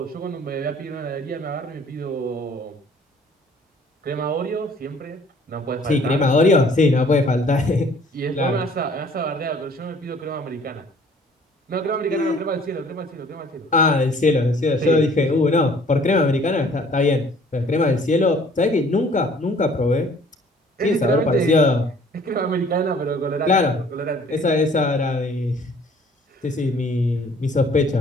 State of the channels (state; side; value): normal; both; correlation 0.55